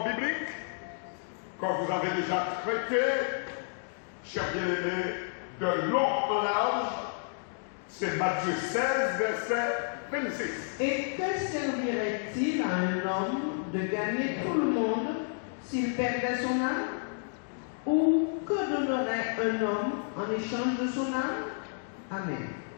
biblique, quand vous avez déjà traité, chers bien-aimés, de long en large, c'est Matthieu 16, verset 26. Et que servirait-il à un homme de gagner tout le monde s'il perdait son âme? Ou que donnerait un homme en échange de son âme? Amen.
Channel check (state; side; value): silent; right; digital silence